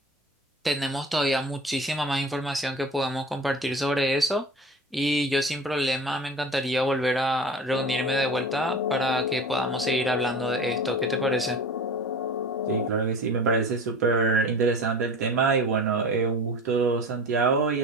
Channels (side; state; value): both; normal; correlation 0.36